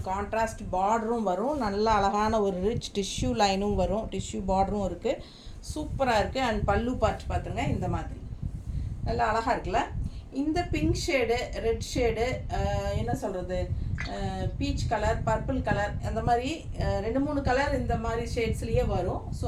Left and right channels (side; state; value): both; identical; correlation 1.00